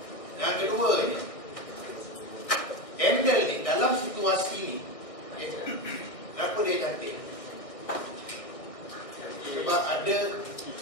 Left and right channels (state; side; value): late; right; 1.6 ms